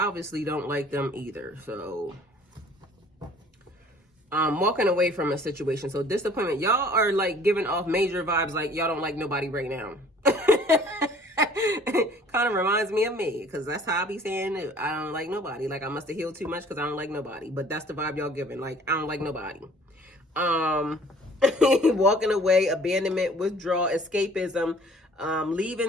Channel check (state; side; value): normal; both; correlation 0.53